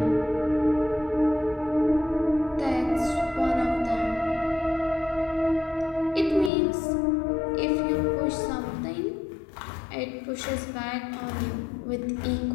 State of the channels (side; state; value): right; drops out; at 6.5 s